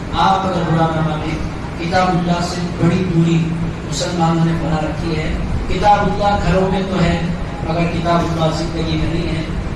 آپ اگر برا نہ مانیں کتاب اللہ سے بڑی دوری مسلمانوں نے بنا رکھی ہے. کتاب اللہ گھروں میں تو ہے مگر کتاب اللہ زندگی میں نہیں ہے.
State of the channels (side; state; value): both; identical; correlation 1.00